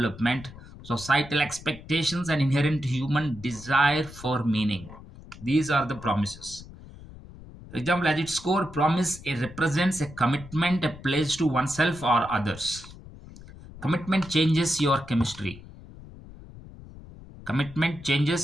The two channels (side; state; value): left; noise; rumble, 17 dB below the sound